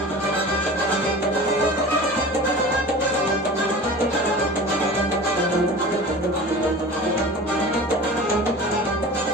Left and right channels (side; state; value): both; normal; correlation 0.37